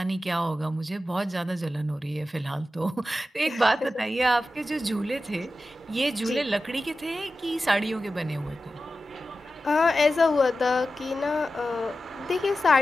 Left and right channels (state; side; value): normal; both; correlation 0.93